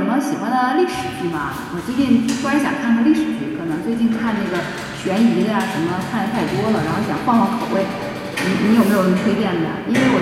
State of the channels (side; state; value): both; identical; correlation 1.00